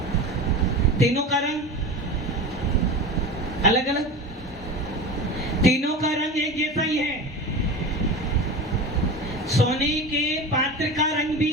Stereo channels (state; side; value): normal; both; correlation 0.29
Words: तीनों का रंग अलग अलग, तीनों का रंग एक जैसा ही है। सोने के पात्र का रंग भी